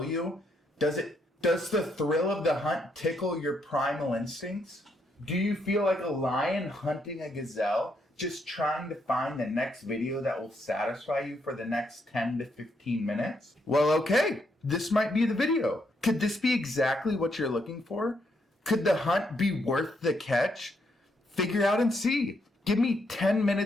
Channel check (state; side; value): normal; both; correlation 0.76